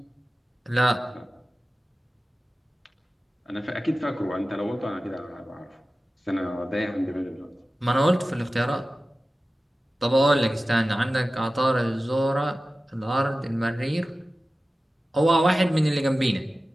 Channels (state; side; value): normal; both; correlation 0.96